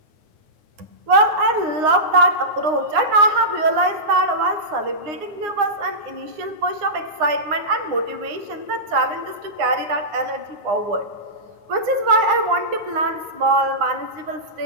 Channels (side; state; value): left; late; 9.7 ms